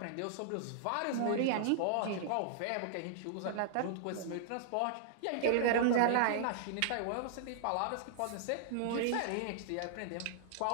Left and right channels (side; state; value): both; different; correlation -0.01